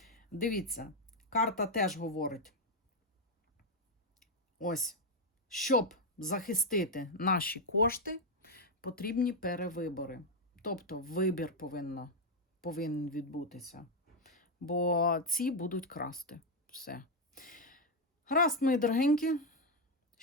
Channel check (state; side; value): normal; both; correlation 0.03